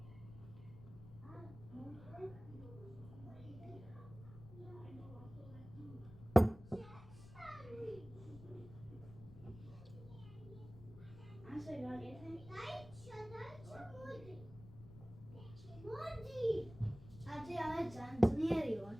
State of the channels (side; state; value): left; noise; rumble, 16 dB below the sound